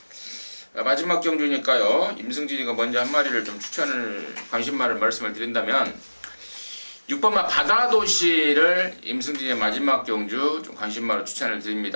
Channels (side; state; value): both; inverted; correlation -1.00